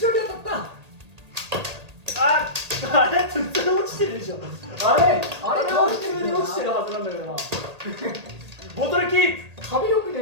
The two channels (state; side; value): late; left; 1.8 ms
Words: 当たった。あれ普通に落ちてるでしょ。あれ普通に落ちてるはずなんだけどな。ボトルキープ。壁よく